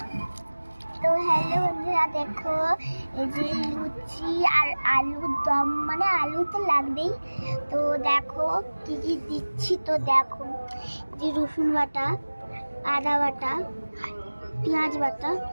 তো হ্যালো বন্ধুরা, দেখো এই যে লুচি আর আলুর দম, মানে আলু তো লাগবেই। তো দেখো কি কি দিচ্ছি, তো দেখো যে রসুন বাটা, আদা বাটা, পেঁয়াজ বাটা,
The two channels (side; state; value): both; inverted; correlation -1.00